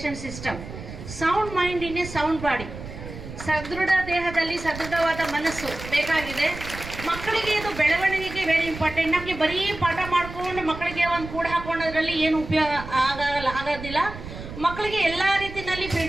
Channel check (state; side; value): noise; right; rumble, 11 dB below the sound